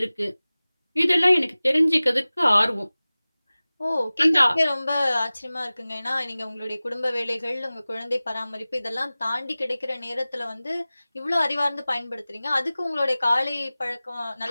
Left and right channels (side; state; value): both; inverted; correlation -0.98